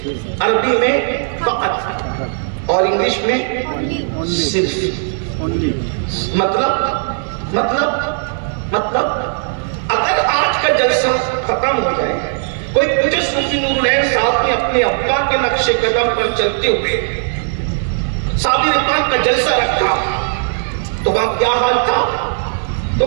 عربی میں فقط، اور انگلش میں صرف. مطلب اگر آج کا جلسہ ختم ہو جائے، کوئی پوچھے صوفی نور العین صاحب نے اپنے ابا کے نقش قدم پر چلتے ہوئے صابر پاک کا جلسہ رکھا تو وہاں کیا حال تھا؟ تو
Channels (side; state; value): left; silent; 60 dB below the other